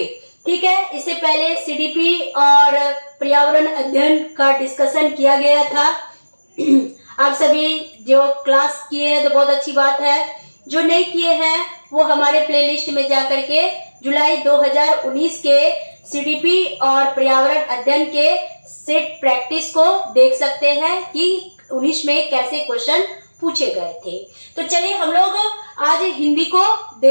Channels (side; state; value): both; inverted; correlation -1.00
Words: ठीक है, इससे पहले सीडीपी और पर्यावरण अध्ययन का डिस्कशन किया गया था। आप सभी जो क्लास किए हैं तो बहुत अच्छी बात है, जो नहीं किए हैं वो हमारे प्लेलिस्ट में जा करके जुलाई 2019 के सीडीपी और पर्यावरण अध्ययन के सेट प्रैक्टिस को देख सकते हैं कि 19 में कैसे क्वेश्चन पूछे गए थे। तो चलिए हम लोग आज हिंदी को